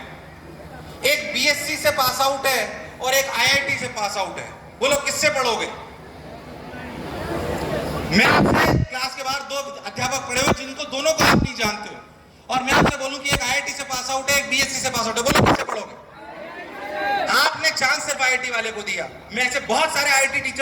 एक बीएससी से पास आउट है और एक आईआईटी से पास आउट है। बोलो किससे पढ़ोगे? मैं आपसे, क्लास के बाहर 2 अध्यापक खड़े हुए जिनको दोनों को आप नहीं जानते हो, और मैं आपसे बोलूं कि एक आईआईटी से पास आउट है, एक बीएससी से पास आउट है, बोलो किससे पढ़ोगे? आपने चांस सिर्फ आईआईटी वाले को दिया। मैं ऐसे बहुत सारे आईआईटी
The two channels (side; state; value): both; identical; correlation 1.00